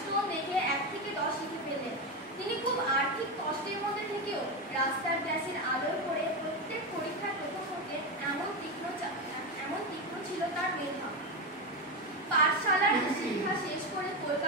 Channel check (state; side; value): normal; both; correlation 0.13